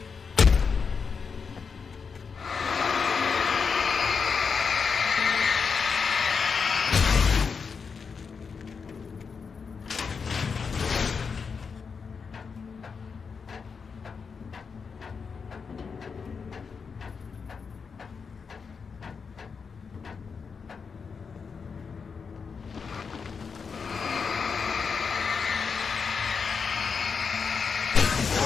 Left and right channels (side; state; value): right; quieter; 5.6 dB